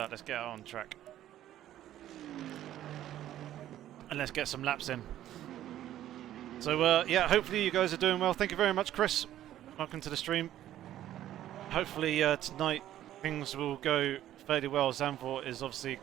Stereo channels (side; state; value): left; quieter; 12.6 dB